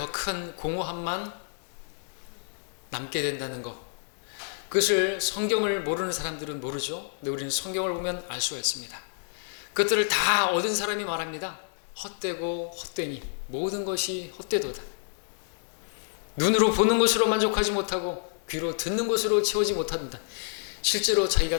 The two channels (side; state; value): right; silent; digital silence